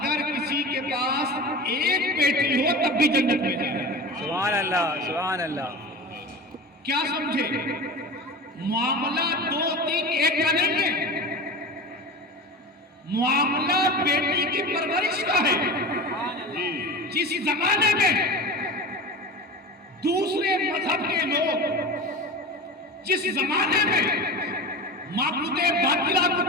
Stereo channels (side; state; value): both; normal; correlation 0.31